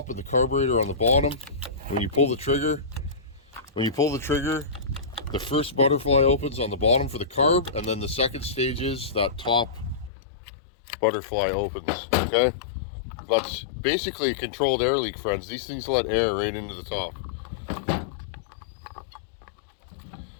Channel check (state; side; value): drops out; right; at 10.1 s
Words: and the carburetor on the bottom. When you pull the trigger, the first butterfly opens on the bottom for the carb, and then the second stage is that top butterfly opens. Okay, that's basically a controlled air leak, friends. These things let air right into the top.